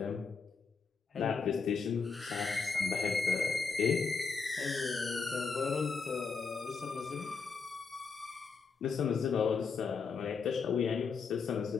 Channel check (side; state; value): right; quieter; 5.1 dB